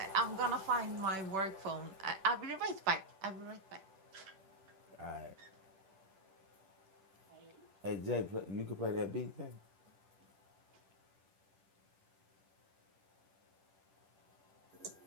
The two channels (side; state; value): left; late; 10 ms